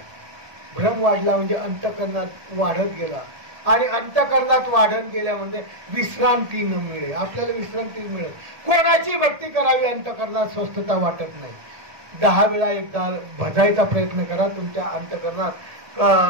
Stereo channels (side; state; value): left; late; 1.7 ms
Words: भ्रम वाढला म्हणजे अंतःकरणात वाढत गेला. आणि अंतःकरणात वाढत गेल्यामध्ये विश्रांती न मिळे, आपल्याला विश्रांती मिळत. कोणाची भक्ती करावी अंतःकरणात स्वस्थता वाटत नाही. 10 वेळा एकदा भजायचा प्रयत्न करा, तुमच्या अंतःकरणात